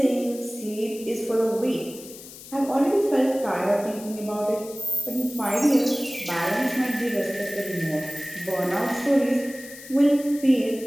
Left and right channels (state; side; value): noise; left; hiss, 16 dB below the sound